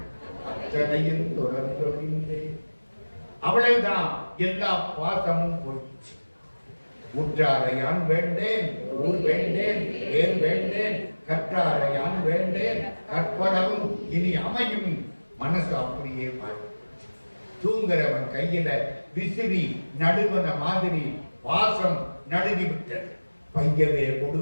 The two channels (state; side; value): inverted; both; correlation -1.00